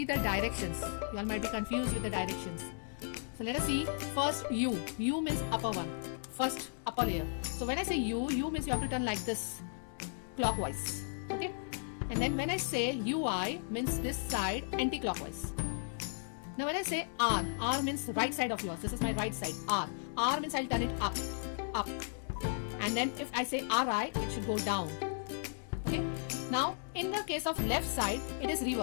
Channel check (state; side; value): silent; right; digital silence